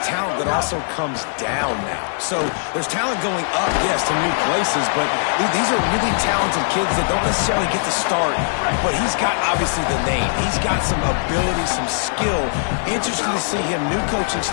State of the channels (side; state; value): right; silent; digital silence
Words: talent that also comes down now. So there's talent going up, yes, to new places, but these are really talented kids that don't necessarily get the start, but he's got obviously the name. He's got some ability, some skill. Interesting to see him, new coaching